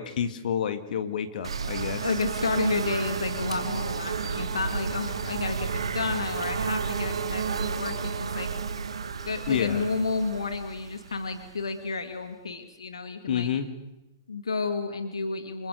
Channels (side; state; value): both; inverted; correlation -0.66